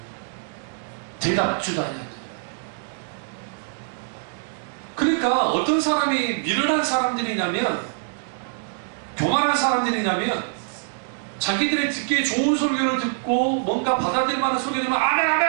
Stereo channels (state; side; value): silent; left; digital silence